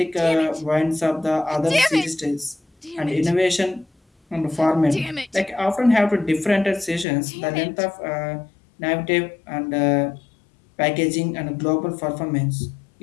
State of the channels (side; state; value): right; drops out; at 7.1 s